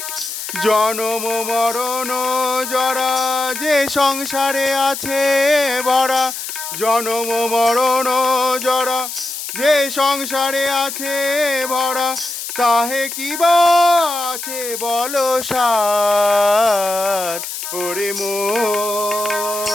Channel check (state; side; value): noise; left; hiss, 7 dB below the sound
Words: জনম মরণ জরা যে সংসারে আছে ভরা, জনম মরণ জরা যে সংসারে আছে ভরা, তাহে কি বা আছে বলো সার। ওরে মন